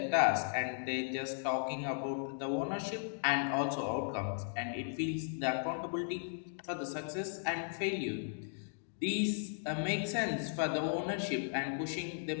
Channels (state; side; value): silent; right; digital silence